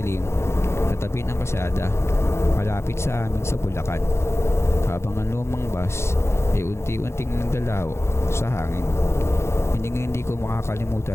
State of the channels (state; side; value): late; right; 0.13 ms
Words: sa tabi ng kalsada, malapit sa amin sa Bulacan, habang ang lumang bus ay unti-unting nagdalaw sa hangin. Hindi ko